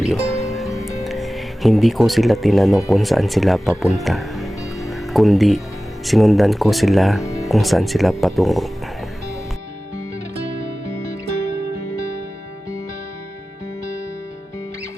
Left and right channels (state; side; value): normal; both; correlation 0.96